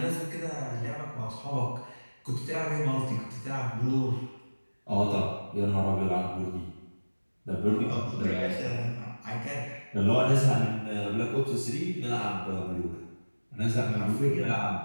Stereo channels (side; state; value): both; inverted; correlation -1.00